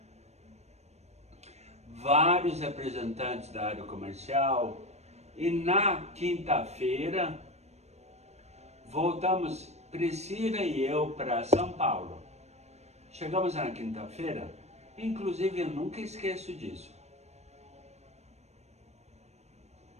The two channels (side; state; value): left; late; 0.32 ms